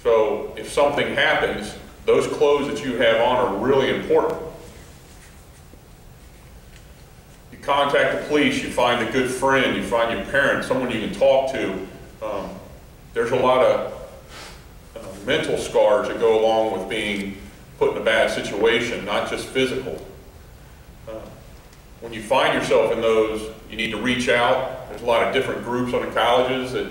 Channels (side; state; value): both; identical; correlation 1.00